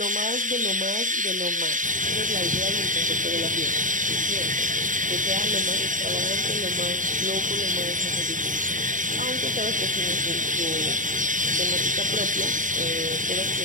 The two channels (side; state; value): left; late; 0.38 ms